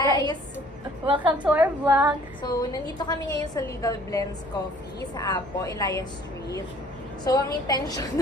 Welcome to our vlog. So, nandito kami ngayon sa Legal Blends Coffee sa Apo, Elias Street. So, ang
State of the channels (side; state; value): both; normal; correlation 0.55